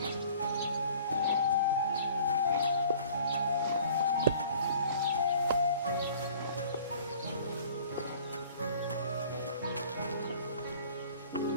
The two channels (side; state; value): both; inverted; correlation -0.50